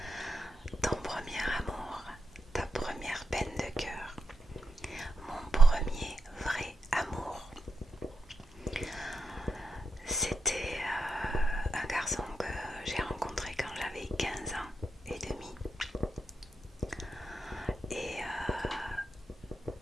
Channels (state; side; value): normal; both; correlation 0.87